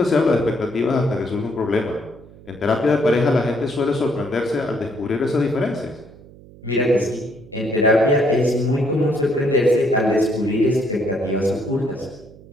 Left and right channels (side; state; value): right; noise; hum, 22 dB below the sound